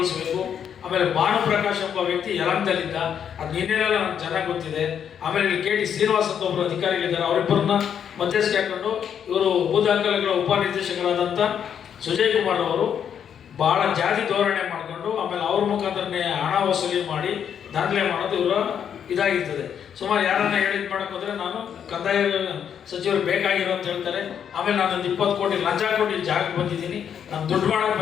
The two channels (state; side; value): quieter; right; 8.4 dB